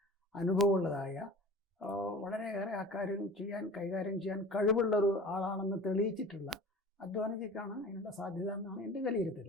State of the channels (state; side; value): normal; both; correlation 0.40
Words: അനുഭവമുള്ളതായ വളരെയേറെ കൈകാര്യം ചെയ്യാൻ കഴിവുള്ളൊരു ആളാണെന്ന് തെളിയിച്ചിട്ടുള്ള അദ്വാനിജിക്കാണ് അതിനുള്ള സാധ്യത എന്നാണ് എൻ്റെ വിലയിരുത്തൽ.